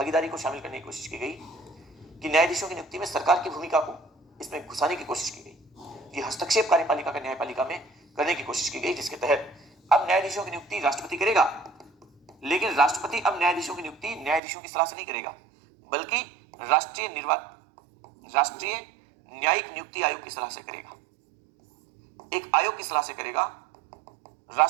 को शामिल करने की कोशिश की गई कि न्यायाधीशों की नियुक्ति में सरकार की भूमिका को इसमें घुसाने की कोशिश की गई। ये हस्तक्षेप कार्यपालिका का न्यायपालिका में करने की कोशिश की गई, जिसके तहत अब न्यायाधीशों की नियुक्ति राष्ट्रपति करेगा, लेकिन राष्ट्रपति अब न्यायाधीशों की नियुक्ति न्यायाधीशों की सलाह से नहीं करेगा, बल्कि राष्ट्रीय न्यायिक नियुक्ति आयोग की सलाह से करेगा। एक आयोग की सलाह से करेगा,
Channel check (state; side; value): drops out; left; at 14.4 s